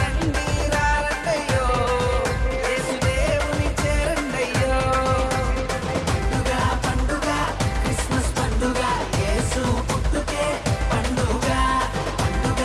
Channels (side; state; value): both; identical; correlation 1.00